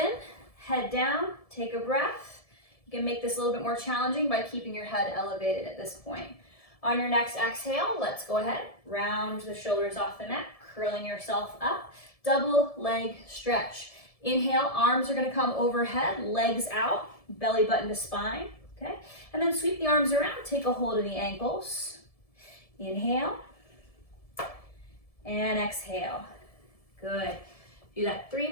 head down, take a breath. You can make this a little bit more challenging by keeping your head elevated at this point. On your next exhale, let's go ahead, round the shoulders off the mat, curling yourself up, double leg stretch. Inhale, arms are gonna come overhead, legs out, belly button to spine, okay? And then sweep the arms around, take a hold of the ankles. Inhale, and exhale. Good. Do that 3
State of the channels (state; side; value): late; right; 1.7 ms